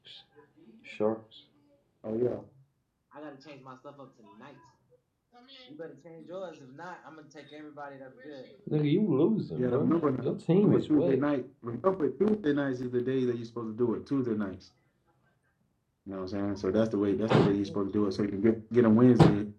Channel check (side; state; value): both; identical; correlation 1.00